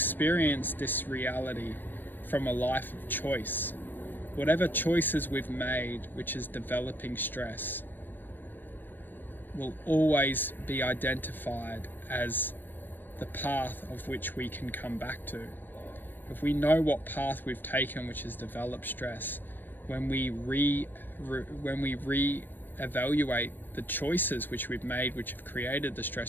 this reality from a life of choice. Whatever choices we've made, which is developing stress, will always be identified as the path of which we can come back to. If we know what path we've taken, which has developed stress, when we re-evaluate the choices which we've made, which have created the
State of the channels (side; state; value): right; late; 0.093 ms